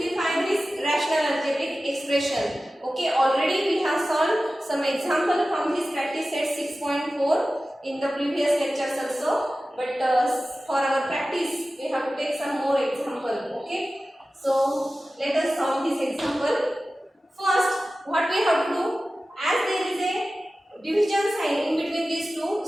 this rational algebraic expression. Okay. Already we have solved some example from this practice set 6.4 in the previous lectures also. But for our practice we have to take some more example. Okay. So let us solve this example. First, what we have to do, as there is a division sign in between these two,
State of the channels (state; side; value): normal; both; correlation 0.95